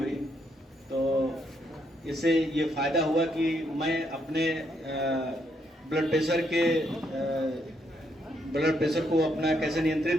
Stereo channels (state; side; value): normal; both; correlation 0.75